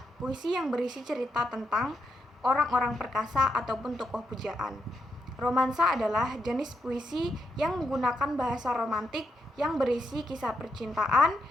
puisi yang berisi cerita tentang orang-orang perkasa ataupun tokoh pujaan. Romansa adalah jenis puisi yang menggunakan bahasa romantik yang berisi kisah percintaan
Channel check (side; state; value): both; normal; correlation 0.81